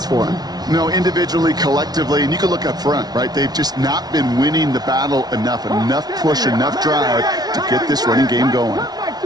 for him. No, individually, collectively, and you can look up front, right? They've just not been winning the battle enough push, enough drive to get this running game going.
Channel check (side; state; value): left; late; 0.19 ms